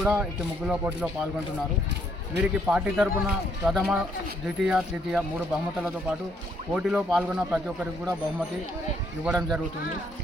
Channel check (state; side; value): normal; both; correlation 0.70